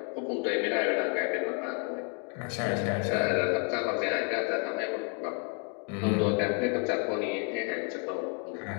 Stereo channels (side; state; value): right; quieter; 38.2 dB